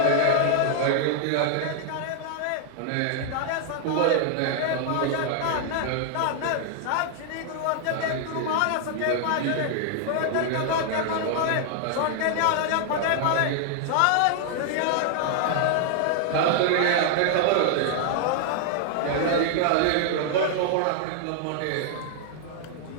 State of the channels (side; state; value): both; different; correlation 0.00